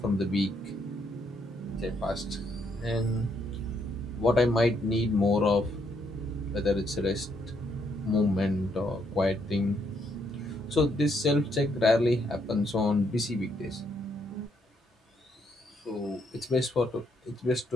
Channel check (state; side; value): normal; both; correlation 0.74